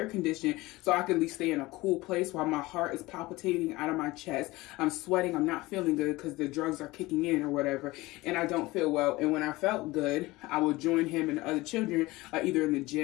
conditioning, so I could at least stay in a cool place while my heart is palpitating out of my chest. I'm sweating, I'm not feeling good because the drugs are kicking in or whatever, and I don't feel well. And when I felt good, I would join him and the other children either in the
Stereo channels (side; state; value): right; quieter; 20.3 dB